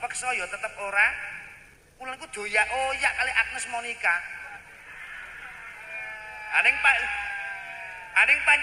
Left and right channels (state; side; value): identical; both; correlation 1.00